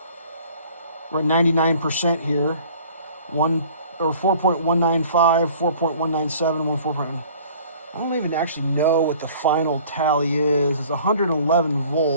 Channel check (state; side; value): inverted; both; correlation -0.51